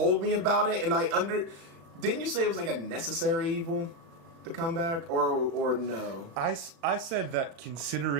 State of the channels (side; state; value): left; late; 36 ms